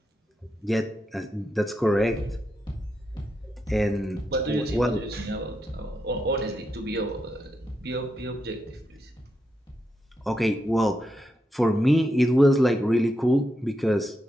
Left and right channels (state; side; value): normal; both; correlation 0.84